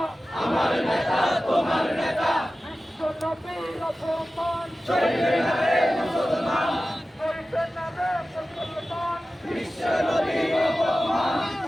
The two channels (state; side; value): normal; both; correlation 0.95